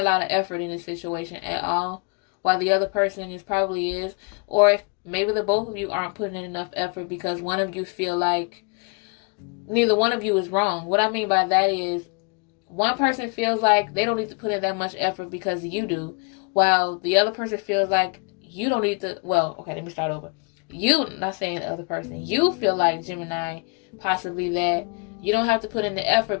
lot of effort in this situation at all, while the other person probably is. Or if maybe the both of you aren't putting in enough effort because one of you feel like neither one of you is wrong. What I mean by that is one person feels like they don't need to put in that much effort because you do, while the other person feels like you don't need to. Well, okay, let me start over. You, not saying the other person, you feel like Gemini possibly that you don't have to put in the effort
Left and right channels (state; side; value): quieter; right; 35.1 dB